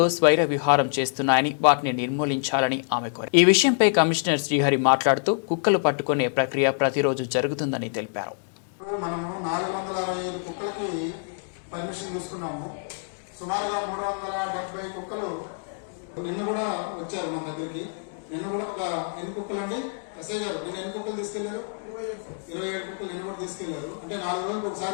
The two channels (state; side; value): silent; right; digital silence